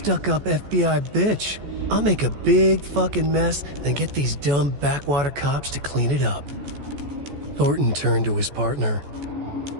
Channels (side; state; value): left; late; 14 ms